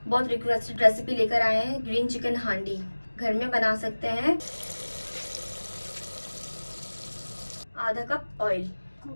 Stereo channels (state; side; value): inverted; both; correlation -1.00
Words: बहुत रिक्वेस्टेड रेसिपी लेकर आए हैं। ग्रीन चिकन हांडी घर में बना सकते हैं। आधा कप ऑयल